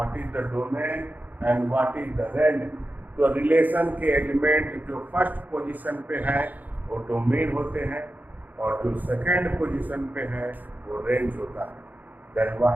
is the domain and what is the range? तो रिलेशन के एलिमेंट जो फर्स्ट पोजीशन पे है वो डोमेन होते हैं और जो सेकंड पोजीशन पे है वो रेंज होता है. Then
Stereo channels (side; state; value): left; late; 0.083 ms